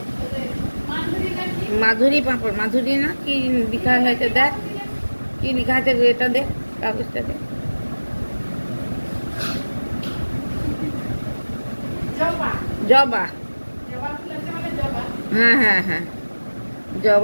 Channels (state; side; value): inverted; both; correlation -1.00